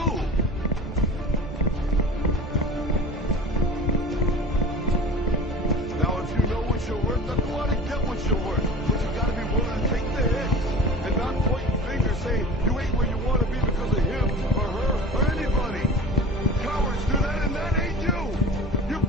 Now, if you know what you're worth, then go out and get what you're worth. But you gotta be willing to take the hits and not pointing fingers saying you ain't where you want to be because of him or her or anybody. Cowards do that, and that ain't you. You're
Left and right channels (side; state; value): both; normal; correlation 0.40